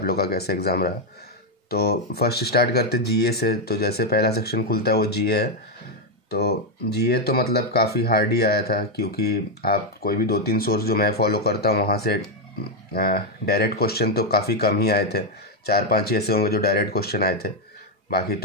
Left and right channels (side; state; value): both; normal; correlation 0.02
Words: लोग का कैसा एग्ज़ाम रहा। तो फर्स्ट स्टार्ट करते जीए से। तो जैसे पहला सेक्शन खुलता है वो जीए है। तो जीए तो मतलब काफ़ी हार्ड ही आया था, क्योंकि आप कोई भी 2-3 सोर्स जो मैं फॉलो करता हूँ वहाँ से डायरेक्ट क्वेश्चन तो काफ़ी कम ही आए थे। 4-5 ही ऐसे होंगे जो डायरेक्ट क्वेश्चन आए थे। बाकी